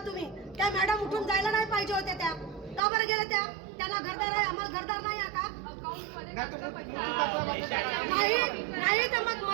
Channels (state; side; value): drops out; left; at 2.8 s